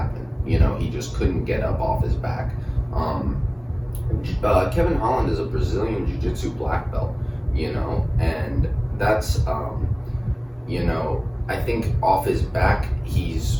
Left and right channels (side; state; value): both; identical; correlation 1.00